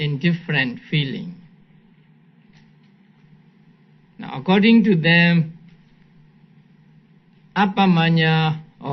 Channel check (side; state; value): both; identical; correlation 1.00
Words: feeling. Now, according to them, appamanya